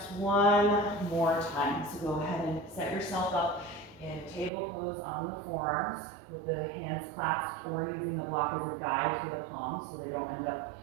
one more time. So go ahead and set yourself up in table pose on the forearms with the hands clasped or using the block as a guide for the palms so they don't end up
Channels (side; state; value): left; drops out; at 4.5 s